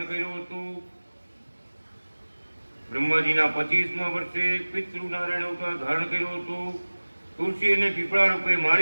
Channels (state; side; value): inverted; both; correlation -1.00